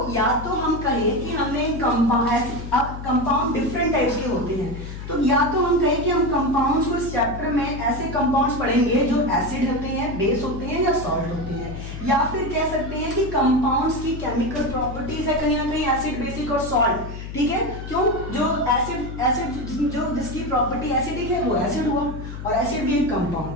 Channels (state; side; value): noise; left; hum, 9 dB below the sound